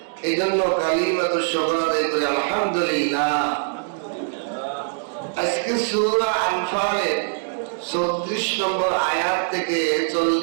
এই জন্য কালিমাতুশ শুকর আদায় করে আলহামদুলিল্লাহ। আজকে সূরা আনফালের 34 নম্বর আয়াত থেকে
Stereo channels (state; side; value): silent; left; digital silence